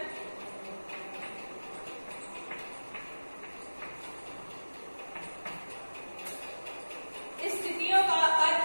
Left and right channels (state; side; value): inverted; both; correlation -1.00